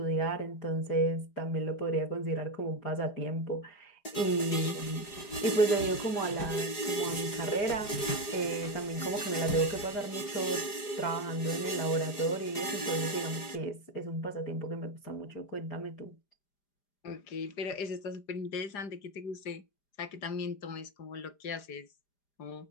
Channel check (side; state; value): right; late; 4.9 ms